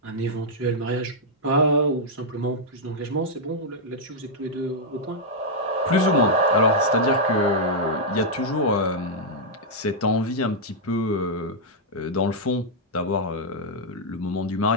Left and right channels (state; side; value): normal; both; correlation -0.05